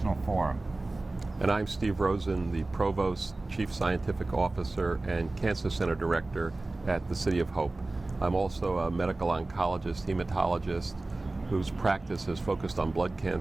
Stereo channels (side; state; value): left; quieter; 3.0 dB